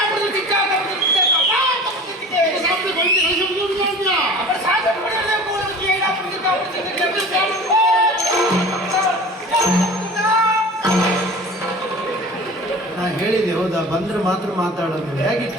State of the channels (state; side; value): normal; both; correlation 0.39